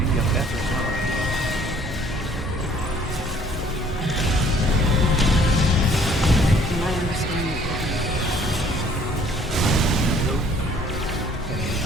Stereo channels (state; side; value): normal; both; correlation 0.58